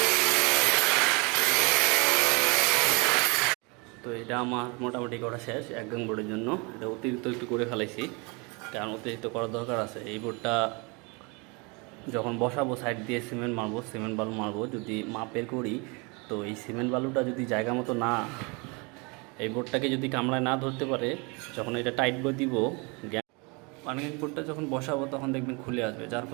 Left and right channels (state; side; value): quieter; left; 29.7 dB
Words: তো এটা আমার মোটামুটি করা শেষ এক গাং বোর্ডের জন্য। এটা অতিরিক্ত একটু করে ফেলাইছি, কারণ অতিরিক্ত করার দরকার আছে। এই বোর্ডটা যখন বসাবো সাইড দিয়ে সিমেন্ট বালু মারবো, যদি মাপের করি, তো এই সিমেন্ট বালুটা যদি জায়গা মতো না, এই বোর্ডটাকে যদি কামড়ায় না ধরতে পারে, যখন এটা টাইট করে দিব, পানিং বোর্ডটা যখন বসাবো তখন দেখবেন খুলে আসবে। যার